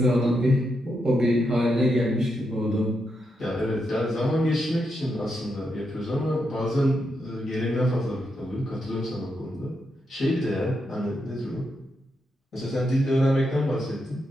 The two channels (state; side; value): normal; both; correlation 0.83